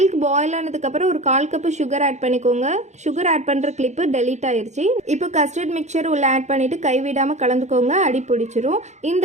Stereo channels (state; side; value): late; left; 0.33 ms